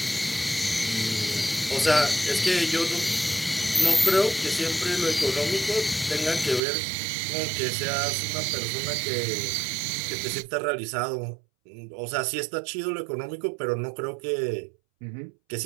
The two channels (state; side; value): drops out; left; at 6.6 s